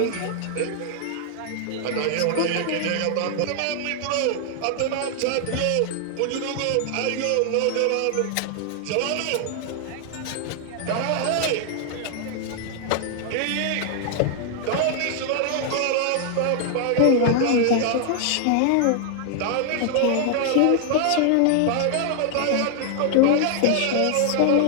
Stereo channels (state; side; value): different; both; correlation 0.00